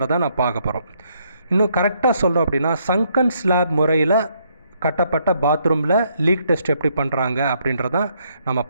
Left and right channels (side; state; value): both; inverted; correlation -0.72